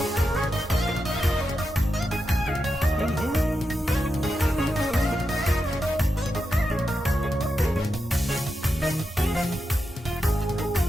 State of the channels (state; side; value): normal; both; correlation 0.88